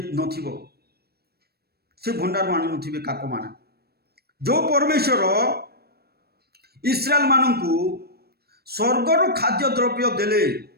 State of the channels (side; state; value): left; late; 0.46 ms